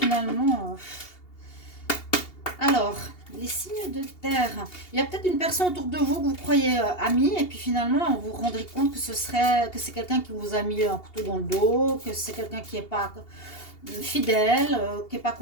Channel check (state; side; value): late; right; 2.8 ms